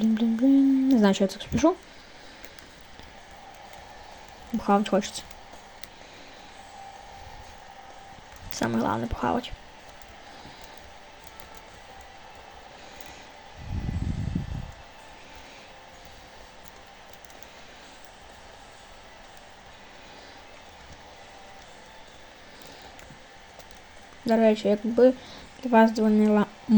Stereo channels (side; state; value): both; identical; correlation 1.00